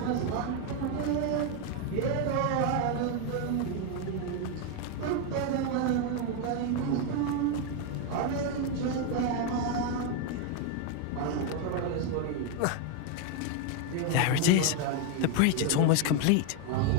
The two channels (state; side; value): different; both; correlation 0.01